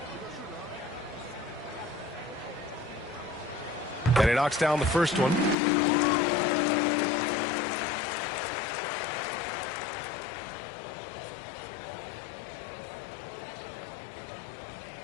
And he knocks down the first one.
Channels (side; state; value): right; drops out; at 5.6 s